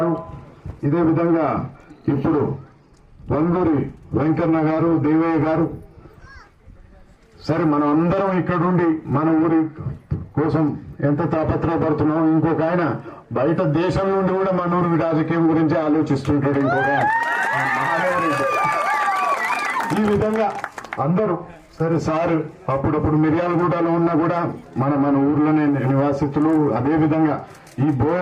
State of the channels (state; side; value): identical; both; correlation 1.00